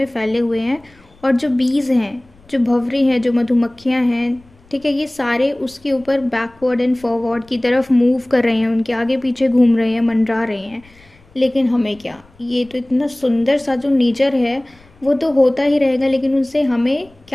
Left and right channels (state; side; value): noise; left; rumble, 29 dB below the sound